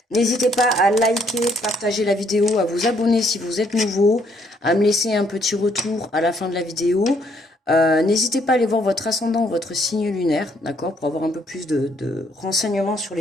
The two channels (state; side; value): normal; both; correlation 0.68